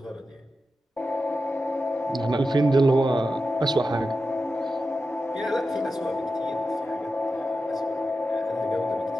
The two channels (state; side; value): normal; both; correlation 0.91